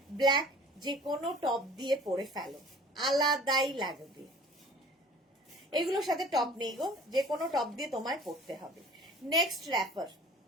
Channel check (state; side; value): normal; both; correlation 0.47